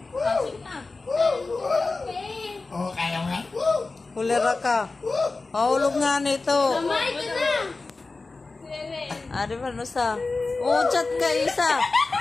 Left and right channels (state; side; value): quieter; right; 3.7 dB